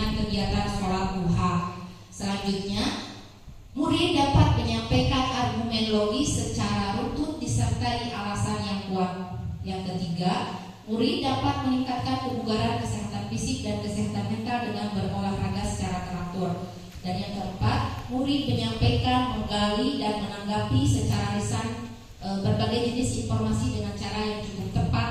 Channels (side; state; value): both; identical; correlation 1.00